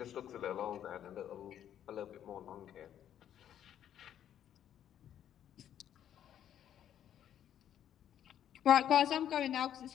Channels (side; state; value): right; quieter; 10.3 dB